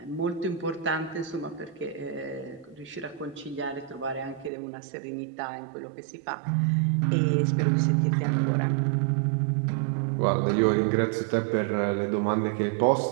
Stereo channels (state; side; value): drops out; left; at 4.5 s